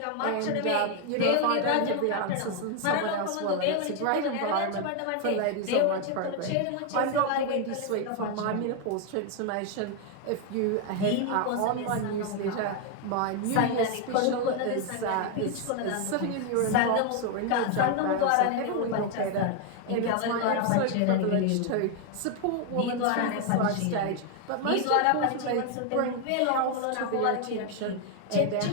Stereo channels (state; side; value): different; both; correlation 0.01